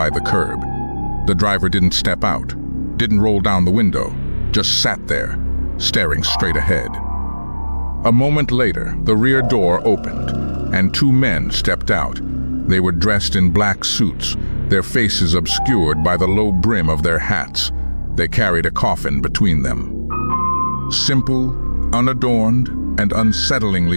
the curb. The driver didn't step out, didn't roll down the window, just sat there, staring straight ahead. A moment later, the rear door opened, and two men stepped out. They were dressed in black suits, their faces obscured by the low brim of their hats. They carried a coffin between them. Simple, unadorned, and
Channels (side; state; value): both; inverted; correlation -1.00